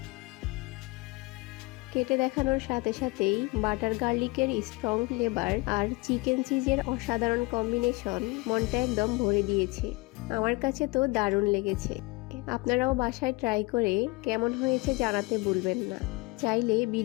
কেটে দেখানোর সাথে সাথেই বাটার গার্লিকের স্ট্রং ফ্লেভার আর চিকেন চিজের অসাধারণ কম্বিনেশন মনটা একদম ভরে দিয়েছে। আমার কাছে তো দারুণ লেগেছে। আপনারাও বাসায় ট্রাই করে কেমন হয়েছে জানাতে ভুলবেন না। চাইলে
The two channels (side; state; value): right; quieter; 24.5 dB